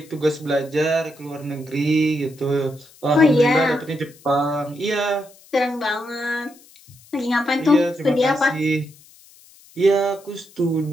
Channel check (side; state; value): left; noise; hiss, 25 dB below the sound